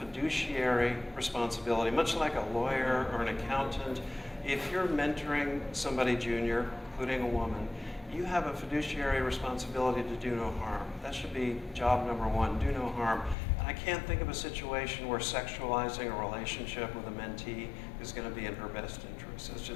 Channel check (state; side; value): drops out; right; at 13.4 s